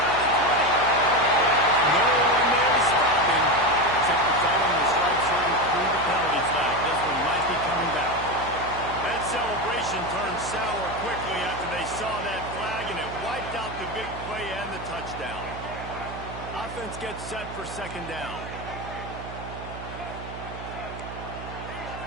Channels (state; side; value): noise; right; hum, 11 dB below the sound